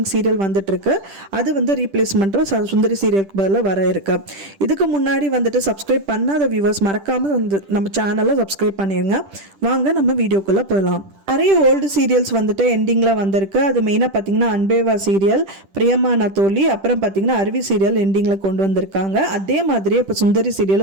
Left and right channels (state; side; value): late; left; 10 ms